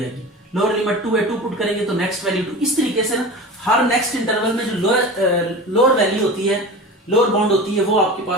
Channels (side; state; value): both; normal; correlation 0.32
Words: आएगी। लोअर लिमिट 2 है, 2 पुट करेंगे तो नेक्स्ट वैल्यू 2। इस तरीके से ना हर नेक्स्ट इंटरवल में जो लोअर वैल्यू होती है, लोअर बाउंड होती है, वो आपके